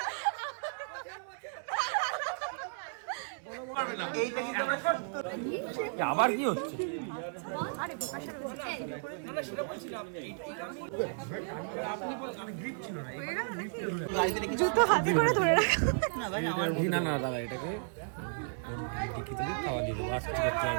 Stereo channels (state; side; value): silent; left; digital silence